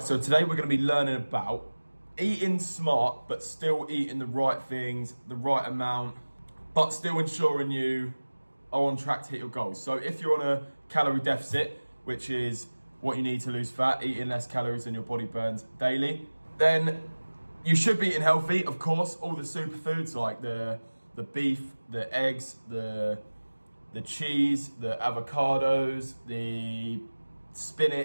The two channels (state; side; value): inverted; both; correlation -1.00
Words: so today we're going to be learning about eating smart, but still eating the right things, the right amount, but still ensuring you are on track to hit your goals. So if you're on a calorie deficit, which is what you need to lose fat, eating less calories than your body burns daily, then you should be eating healthy. Of course, all the superfoods like the beef, the eggs, the cheese, the avocados, the